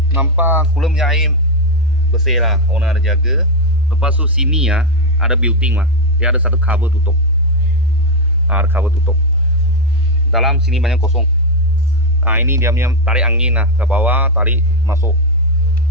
nampak kulum air bersih lah, owner ada jaga. Lepas tu sini ada built-in lah. Dia ada satu cover tutup. Ada cover tutup. Dalam sini banyak kosong. Ini dia punya tarik angin lah ke bawah, tarik masuk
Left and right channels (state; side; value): normal; both; correlation 0.04